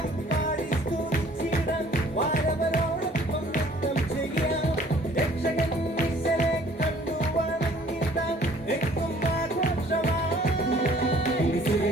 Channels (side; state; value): both; normal; correlation 0.55